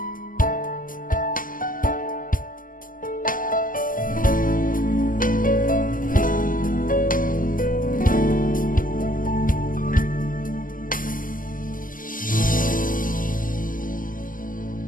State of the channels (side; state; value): right; late; 0.40 ms